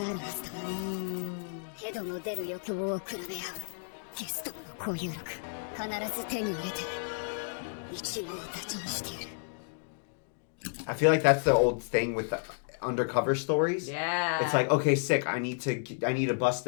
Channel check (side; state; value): right; silent; digital silence